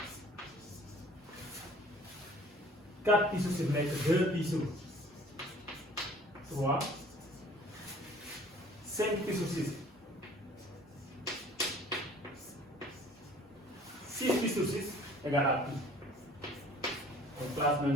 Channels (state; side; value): normal; both; correlation 0.51